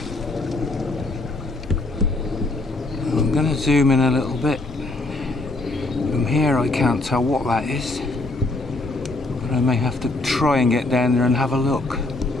I'm going to zoom in a little bit here I can't tell what that is, but I may have to try and get down there and have a look.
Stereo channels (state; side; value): quieter; right; 3.0 dB